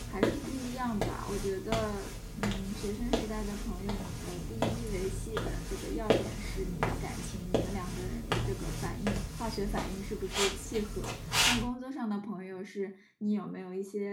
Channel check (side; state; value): both; identical; correlation 1.00